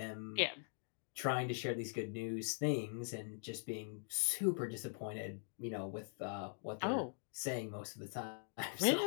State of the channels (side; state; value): right; silent; digital silence